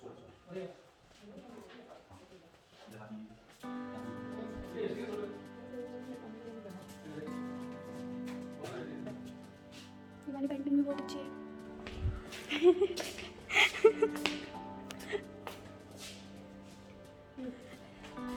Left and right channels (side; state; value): both; identical; correlation 1.00